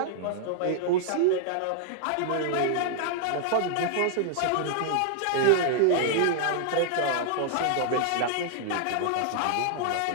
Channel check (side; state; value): both; different; correlation -0.01